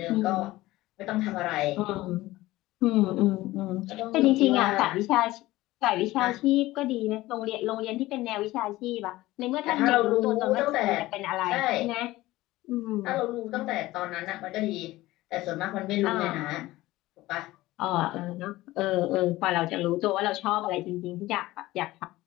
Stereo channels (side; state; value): right; quieter; 17.8 dB